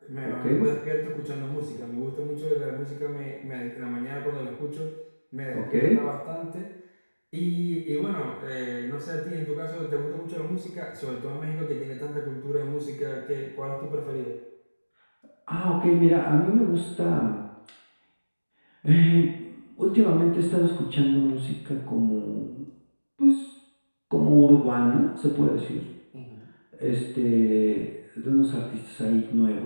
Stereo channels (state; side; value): inverted; both; correlation -1.00